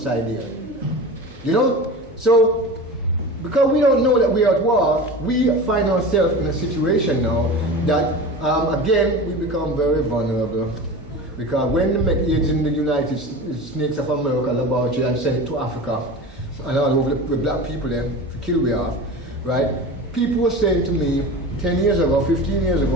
here. You know? So, because we don't know that we are at war, we find ourselves in a situation now that, again, we become very vulnerable. Because when they make aids in the United States of America laboratory and send it to Africa and all over the black people then, to kill we off, right? People were saying to me 10 years ago, 15 years ago,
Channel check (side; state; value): both; normal; correlation 0.32